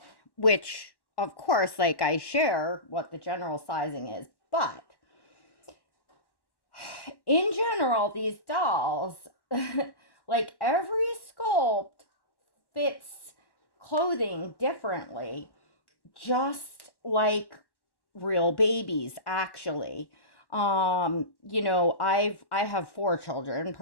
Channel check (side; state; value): right; late; 1.1 ms